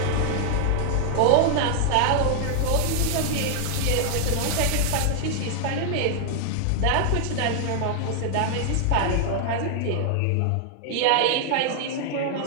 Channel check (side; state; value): both; different; correlation 0.00